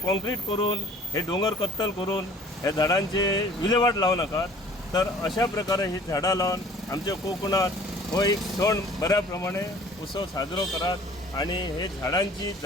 करून हे दोंगर कत्तल करून हे झाडांचे विलेवाट लावू नाकात. तर अशा प्रकारे ही झाडां लावन आमच्या कोकणात हो एक सण बऱ्या प्रमाणे उत्सव साजरो करात आणि हे झाडांची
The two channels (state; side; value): normal; both; correlation 0.51